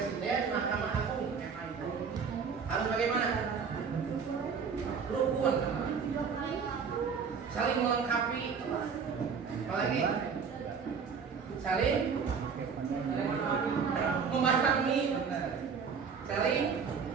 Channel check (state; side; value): quieter; left; 6.0 dB